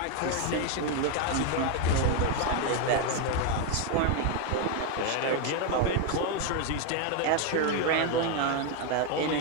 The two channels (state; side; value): different; both; correlation 0.01